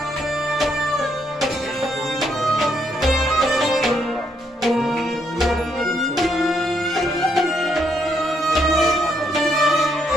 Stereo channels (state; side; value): normal; both; correlation 0.74